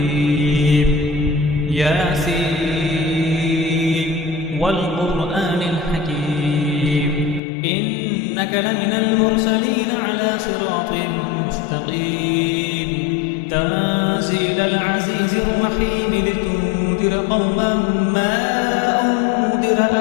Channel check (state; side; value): drops out; right; at 7.4 s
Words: ياسين والقرآن الحكيم إنك لمن المرسلين على صراط مستقيم تنزيل العزيز الرحيم لتنذر قوما ما أنذر